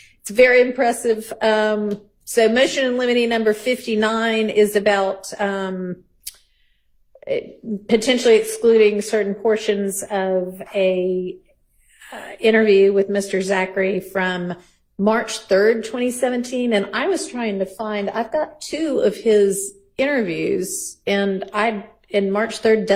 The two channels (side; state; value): both; identical; correlation 1.00